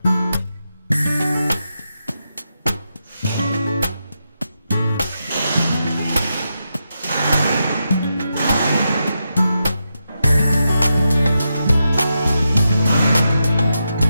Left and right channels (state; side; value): inverted; both; correlation -0.86